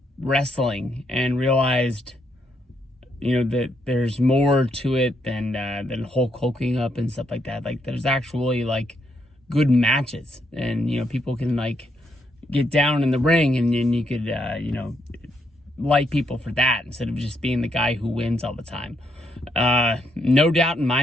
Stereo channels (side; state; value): both; normal; correlation 0.76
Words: wrestling and realized, that there's more to it than Hulk hulking up and stuff like that. Like, there's actually good matches, and people can get down in the ring, and then you could like people for that instead of just being the guy who wins all the time. No doubt in